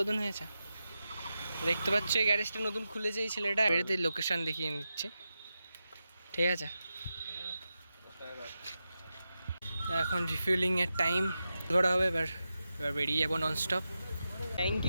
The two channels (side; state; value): both; inverted; correlation -0.90